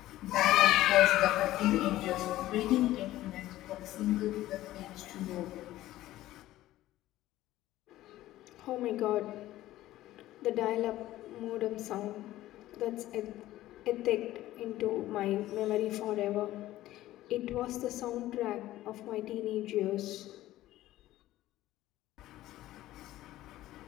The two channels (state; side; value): quieter; right; 15.2 dB